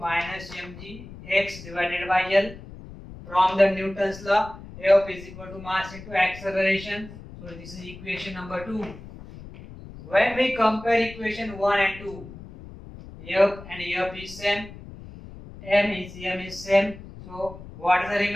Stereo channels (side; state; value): left; noise; rumble, 15 dB below the sound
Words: mgx divided by L. From the Newton's law, F is equal to mass into acceleration. So this is equation number 2. When we compare equation 1 and 2, F and F is same, M is same. So what is the